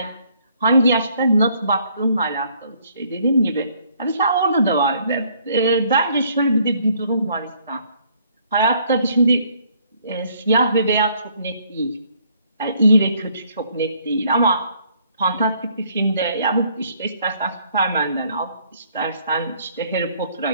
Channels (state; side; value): inverted; both; correlation -0.65